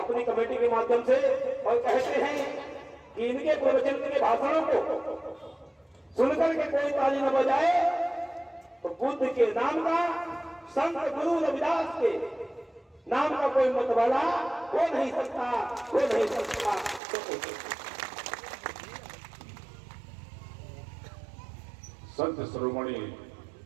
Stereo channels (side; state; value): left; drops out; at 17.0 s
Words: कमेटी के माध्यम से। और कहते हैं कि इनके प्रवचन के भाषणों को सुनकर के कोई ताली न बजाए तो बुद्ध के नाम का, संत गुरु रविदास के नाम का कोई मतवाला हो नहीं सकता, हो नहीं सकता। संत शिरोमणि